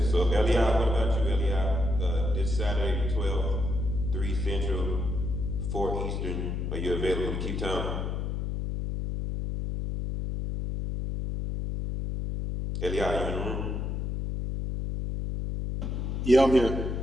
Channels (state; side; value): noise; left; hum, 2 dB below the sound